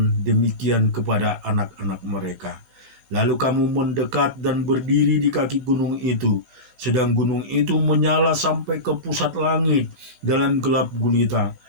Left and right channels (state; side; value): late; left; 15 ms